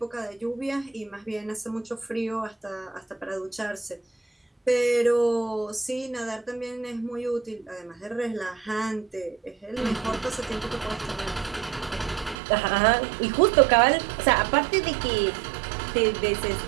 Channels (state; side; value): drops out; left; at 12.4 s